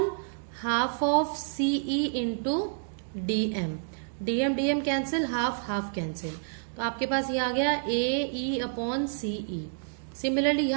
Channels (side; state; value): left; silent; digital silence